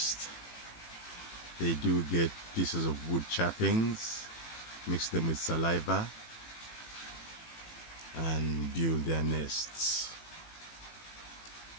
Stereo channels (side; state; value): right; late; 18 ms